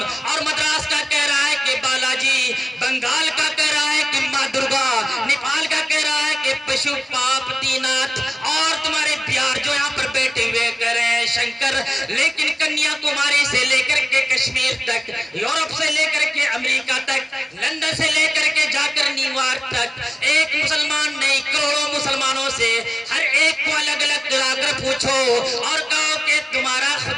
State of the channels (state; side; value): normal; both; correlation 0.95